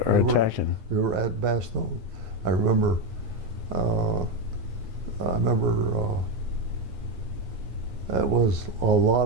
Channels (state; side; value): late; left; 9.7 ms